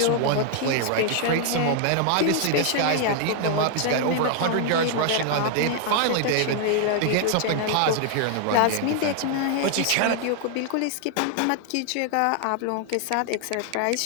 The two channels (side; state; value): both; different; correlation 0.00